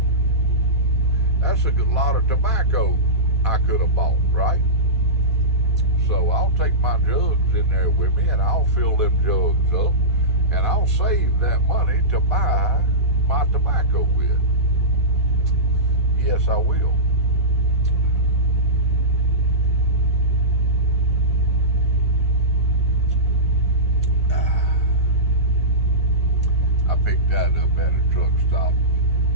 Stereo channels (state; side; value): normal; both; correlation -0.18